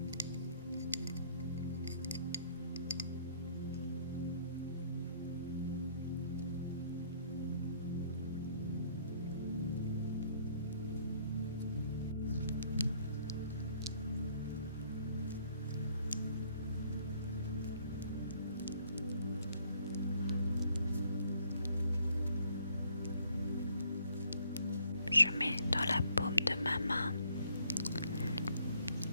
Je mets dans la paume de ma main.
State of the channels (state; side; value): inverted; both; correlation -0.64